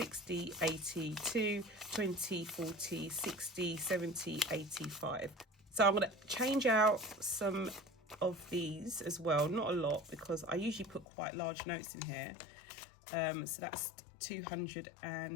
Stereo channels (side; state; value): right; drops out; at 11.1 s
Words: 82, 20, 40, 60, 70, 85. So I'm going to change out some of these as well. Not a lot, because I usually put quite large notes in here. So that's